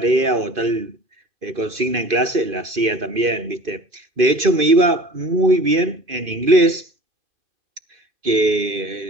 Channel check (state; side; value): late; left; 2.5 ms